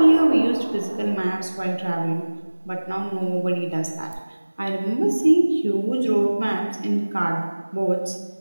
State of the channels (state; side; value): inverted; both; correlation -1.00